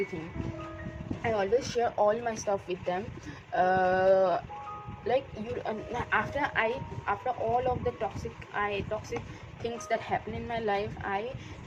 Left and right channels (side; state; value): both; identical; correlation 1.00